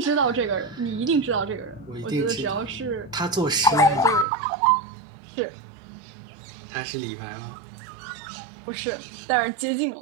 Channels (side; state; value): left; drops out; at 4.2 s